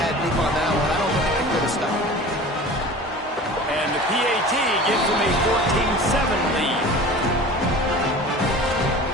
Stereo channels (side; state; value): both; normal; correlation 0.38